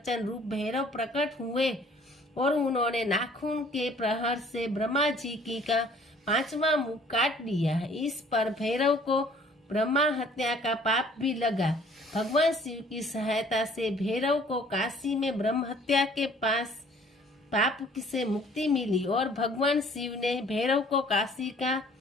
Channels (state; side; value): normal; both; correlation 0.56